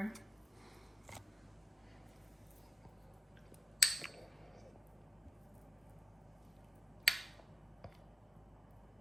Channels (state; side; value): normal; both; correlation 0.89